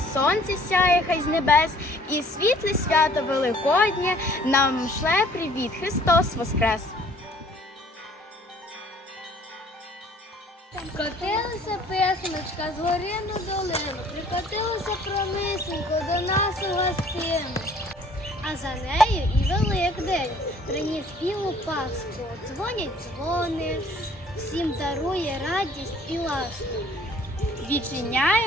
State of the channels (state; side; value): normal; both; correlation 0.56